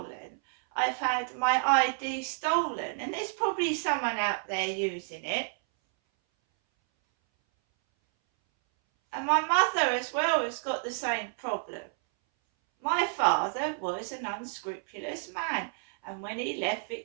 I've had my ID stolen. And there's probably someone out there using it. And my mother as well has got the same problem. My father was an unscrupulous man, and when he left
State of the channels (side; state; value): left; silent; 58 dB below the other